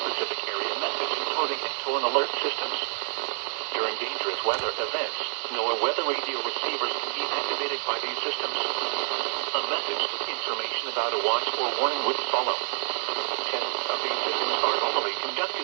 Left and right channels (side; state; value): left; silent; digital silence